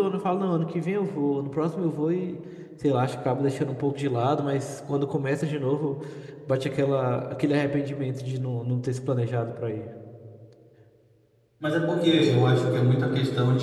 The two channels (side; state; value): both; identical; correlation 1.00